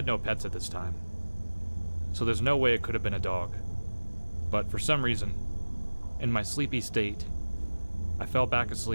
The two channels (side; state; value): both; inverted; correlation -1.00